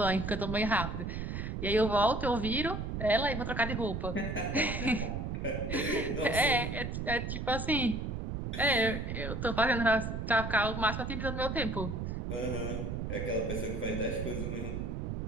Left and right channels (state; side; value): noise; right; rumble, 4 dB below the sound